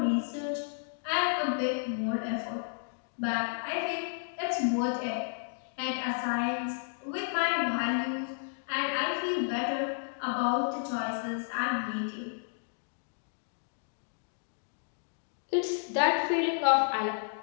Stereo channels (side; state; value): right; silent; digital silence